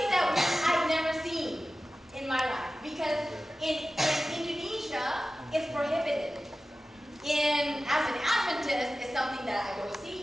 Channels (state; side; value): normal; both; correlation 0.95